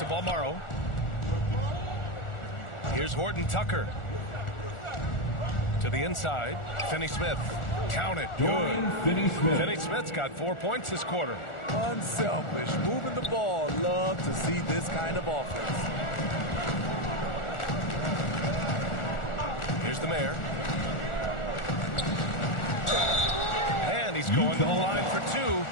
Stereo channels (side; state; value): right; late; 1.4 ms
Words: Balmaro. Here's Horton Tucker. To the inside. Finney-Smith. Count it. Good. Finney-Smith. Finney-Smith's got 4 points this quarter. Unselfish. Moving the ball. Love to see this kind of offense. Here's the Mayor. And he's going to the line for 2.